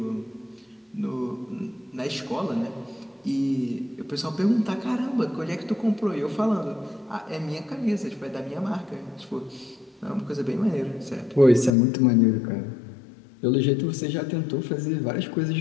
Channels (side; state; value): right; drops out; at 11.7 s